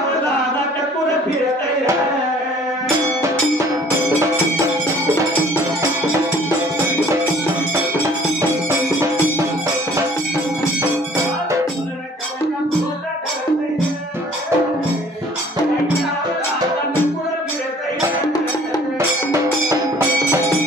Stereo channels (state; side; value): normal; both; correlation 0.54